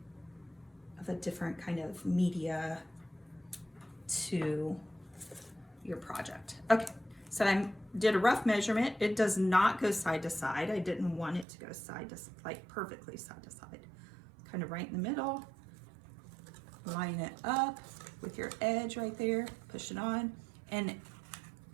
a different kind of media to your project. Okay, so I did a rough measurement. It does not go side to side. I didn't want it to go side to, like perfectly side to side. Kind of right in the middle. Line it up with your edge right there, push it on. And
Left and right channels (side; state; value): left; drops out; at 11.5 s